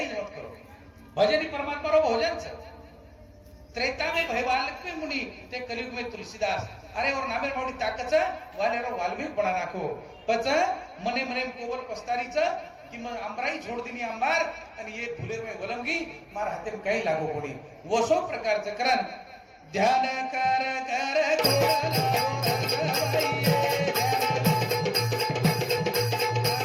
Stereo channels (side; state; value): both; identical; correlation 1.00